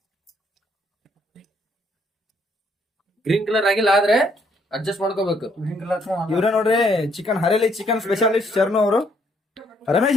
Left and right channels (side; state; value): both; normal; correlation 0.69